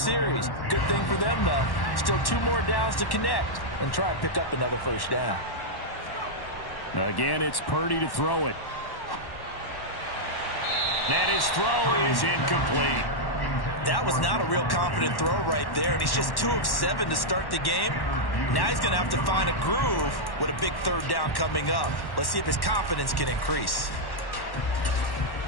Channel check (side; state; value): right; late; 1.1 ms